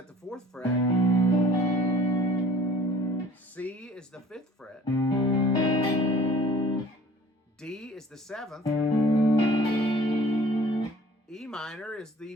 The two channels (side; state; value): both; normal; correlation 0.49